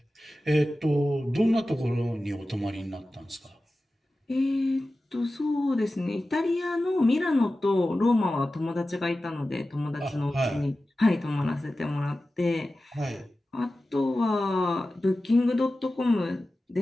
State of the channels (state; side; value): normal; both; correlation 0.95